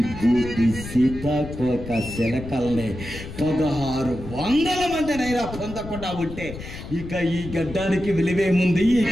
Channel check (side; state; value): left; noise; rumble, 11 dB below the sound